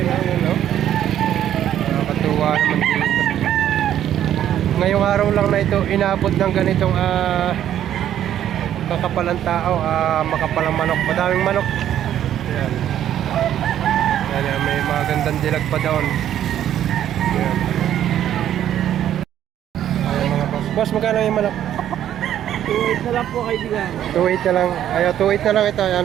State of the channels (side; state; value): left; quieter; 11.0 dB